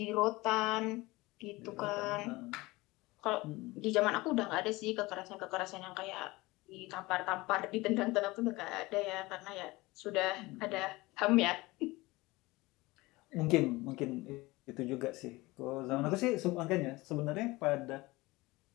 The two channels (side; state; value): right; quieter; 21.4 dB